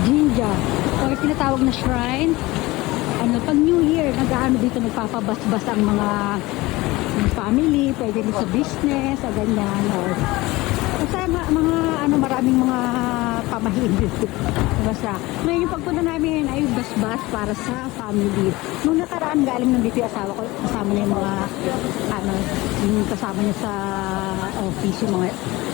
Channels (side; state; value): right; quieter; 20.5 dB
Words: Jinja or tinatawag na shrine. Ano, pag New Year, nag-ano dito, nagpapabas-bas ang mga family, pwede rin sa business, o ganyan, or basta mga ano, maraming mga pamahiin dito. Basta, ngayon yung pagpunta namin ay bas-bas para sa family. Nung nakaraan, galing nandito yung asawa ko, kasama na yung mga ano, yung kasama niya sa office, yung mga